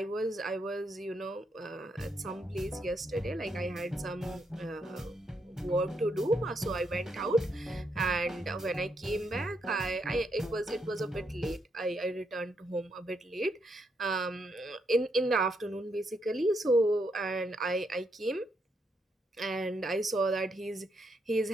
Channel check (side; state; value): both; normal; correlation 0.78